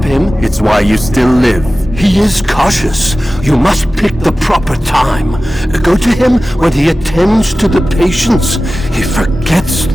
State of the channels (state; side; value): normal; both; correlation 0.96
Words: him? It's why you still live. He is cautious. You must pick the proper time. Go to him when he attends to the patients. He forgets